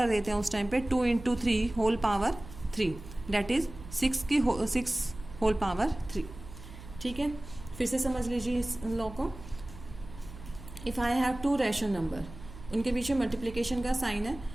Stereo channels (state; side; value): noise; right; hum, 15 dB below the sound